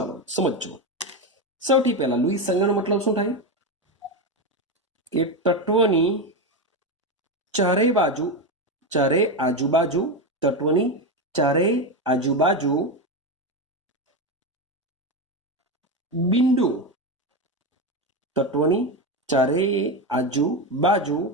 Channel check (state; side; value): normal; both; correlation 0.13